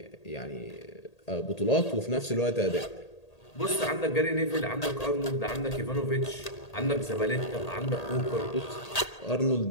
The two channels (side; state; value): right; late; 1.8 ms